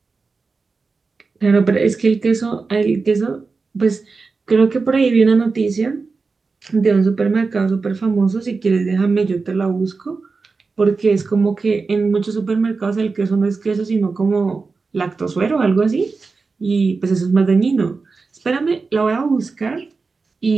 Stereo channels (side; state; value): left; quieter; 4.3 dB